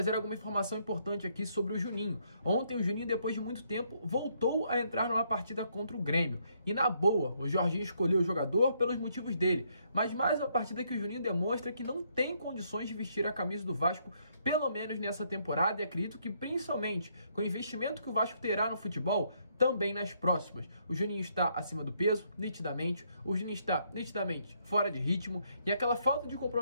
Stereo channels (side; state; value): both; inverted; correlation -0.72